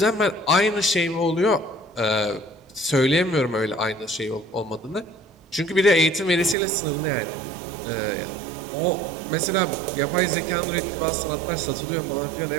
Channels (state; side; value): drops out; left; at 6.6 s